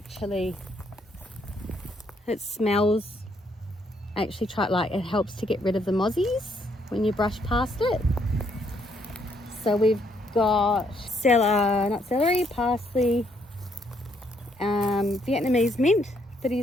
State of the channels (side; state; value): both; normal; correlation 0.71